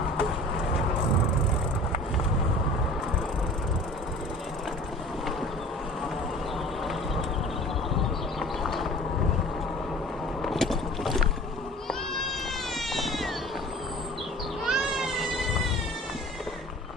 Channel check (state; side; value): normal; both; correlation 0.43